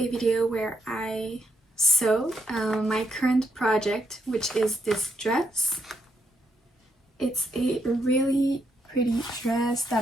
video where I sew my current project, which is this dress. It's a really pretty dress that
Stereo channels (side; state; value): both; normal; correlation 0.78